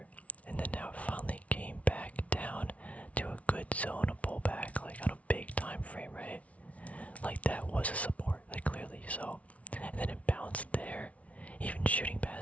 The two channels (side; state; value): right; late; 0.066 ms